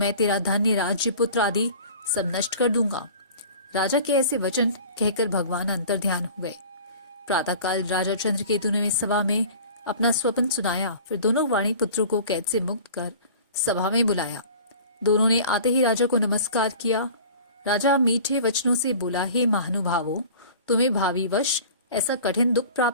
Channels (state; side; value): inverted; both; correlation -0.43